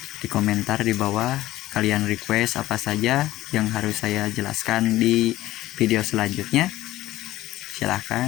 di bawah, kalian request apa saja yang harus saya jelaskan di video selanjutnya.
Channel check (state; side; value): quieter; right; 15.8 dB